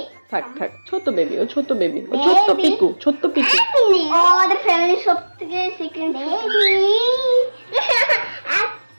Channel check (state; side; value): inverted; both; correlation -1.00